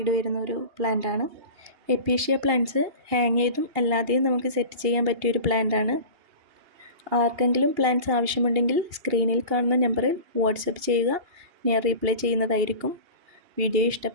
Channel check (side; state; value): left; late; 2.8 ms